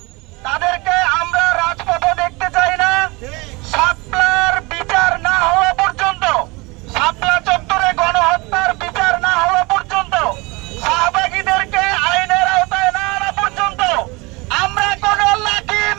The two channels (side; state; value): left; quieter; 25.3 dB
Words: তাদেরকে আমরা রাজপথে দেখতে চাই না। শাপলার বিচার না হওয়া পর্যন্ত, শাপলা চত্বরে গণহত্যার বিচার না হওয়া পর্যন্ত, শাহবাগীদেরকে আইনের আওতায় না আনা পর্যন্ত আমরা কোন লাকি